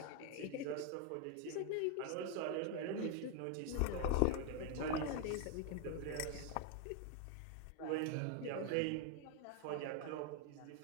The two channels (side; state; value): both; different; correlation 0.01